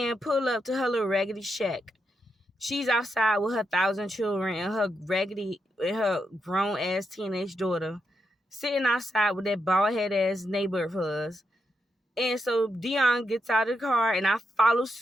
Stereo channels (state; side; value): normal; both; correlation 0.83